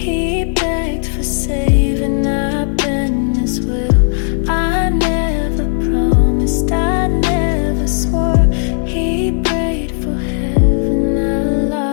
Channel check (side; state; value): right; silent; 70 dB below the other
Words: begged for saving, I bent his will. I never promised, I never swore. He prayed for heaven, I